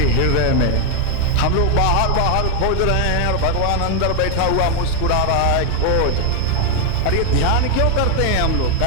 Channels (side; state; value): both; different; correlation 0.00